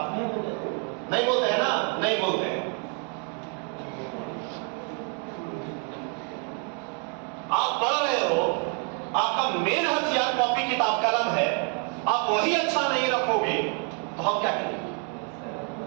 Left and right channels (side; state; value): left; quieter; 39.6 dB